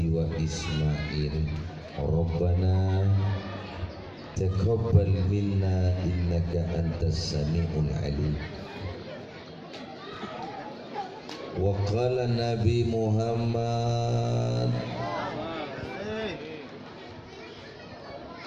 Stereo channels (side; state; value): both; identical; correlation 1.00